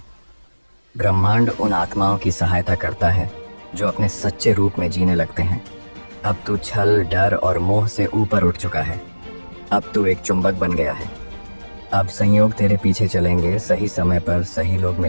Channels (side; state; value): both; inverted; correlation -1.00